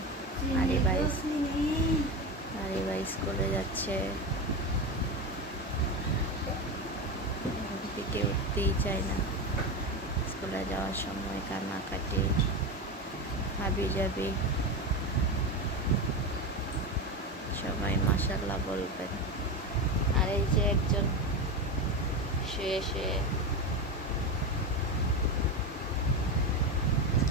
আরে ভাই স্কুলে যাচ্ছে, থেকে উঠতেই চায় না। স্কুলে যাওয়ার সময় কান্নাকাটি, হাবি যাবি। সবাই মাশাআল্লাহ বলবেন। আর এই যে একজন শুয়ে শুয়ে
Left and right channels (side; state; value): both; normal; correlation 0.19